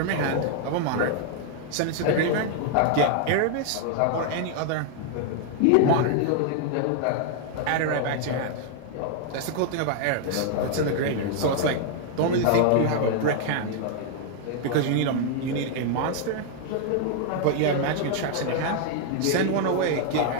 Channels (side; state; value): both; different; correlation 0.00